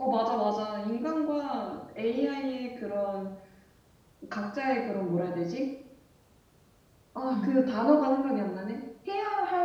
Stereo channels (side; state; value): both; identical; correlation 1.00